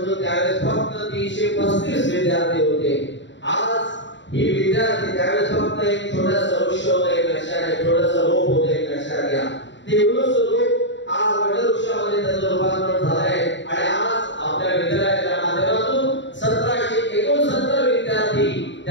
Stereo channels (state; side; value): late; right; 0.53 ms